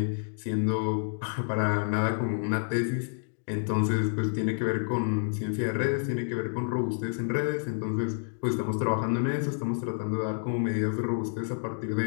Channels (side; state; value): right; silent; digital silence